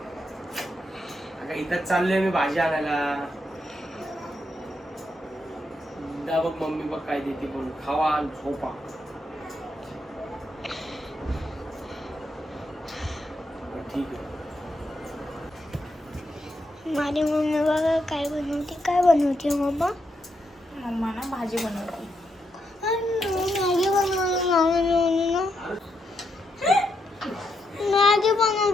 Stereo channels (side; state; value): both; normal; correlation 0.81